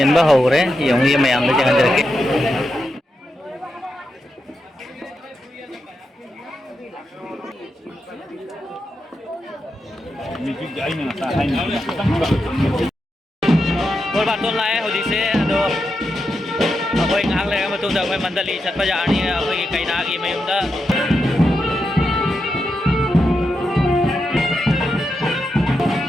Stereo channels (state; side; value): normal; both; correlation 0.86